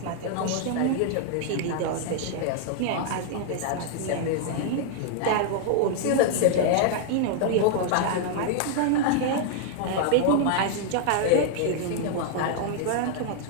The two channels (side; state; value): both; different; correlation 0.00